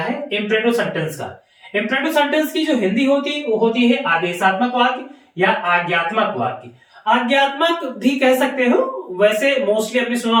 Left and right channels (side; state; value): both; identical; correlation 1.00